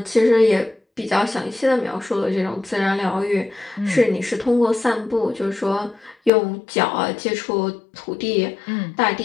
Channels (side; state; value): right; drops out; at 6.3 s